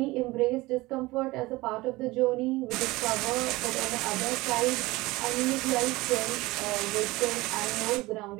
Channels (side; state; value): left; quieter; 20.5 dB